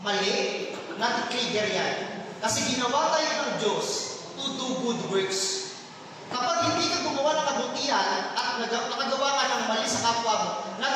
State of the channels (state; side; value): identical; both; correlation 1.00